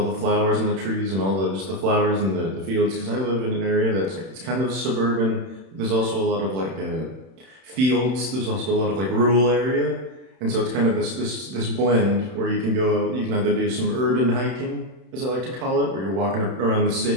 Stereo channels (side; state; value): left; late; 31 ms